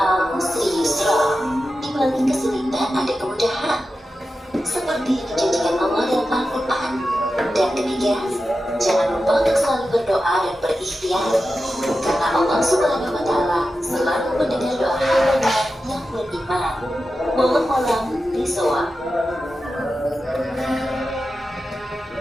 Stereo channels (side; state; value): both; normal; correlation 0.91